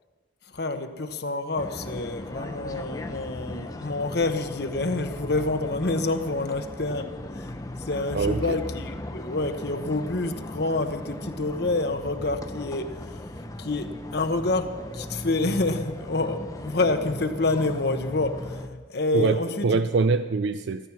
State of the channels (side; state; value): both; normal; correlation 0.14